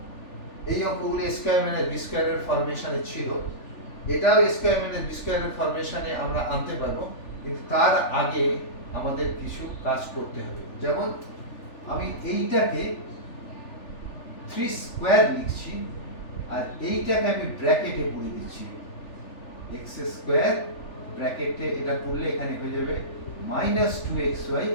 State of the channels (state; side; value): late; right; 3.4 ms